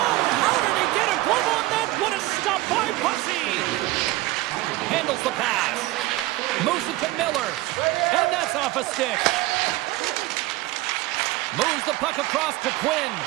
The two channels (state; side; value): quieter; left; 18.3 dB